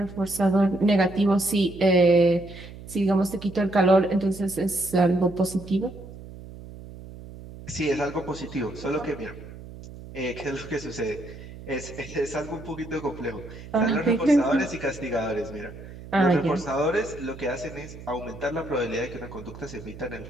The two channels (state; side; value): noise; right; hum, 15 dB below the sound